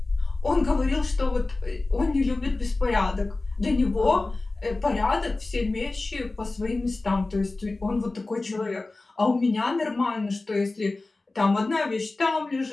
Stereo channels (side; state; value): right; quieter; 3.2 dB